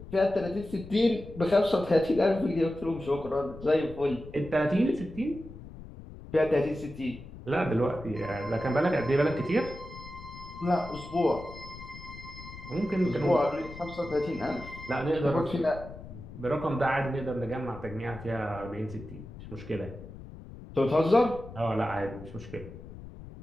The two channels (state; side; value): noise; left; rumble, 14 dB below the sound